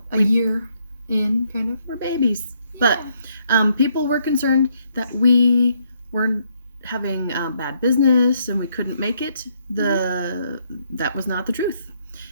a year in, kind of. We're babies. Yeah. But people were concerned that we weren't having bad business and we couldn't make it. That was not the truth.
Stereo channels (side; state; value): both; inverted; correlation -0.72